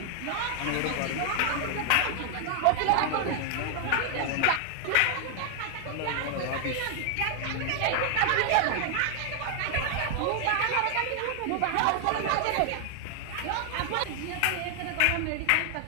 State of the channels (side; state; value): both; different; correlation 0.00